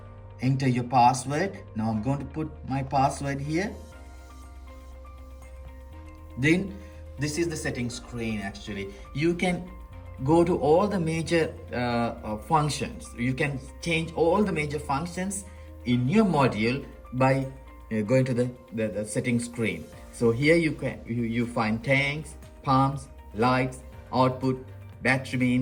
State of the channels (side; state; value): both; identical; correlation 1.00